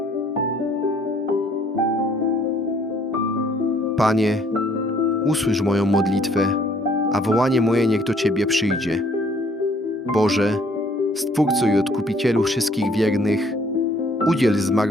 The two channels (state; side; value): normal; both; correlation 0.61